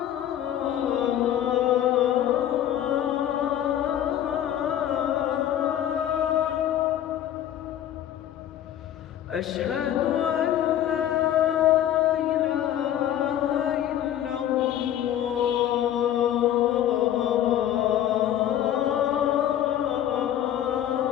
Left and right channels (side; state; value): right; quieter; 11.2 dB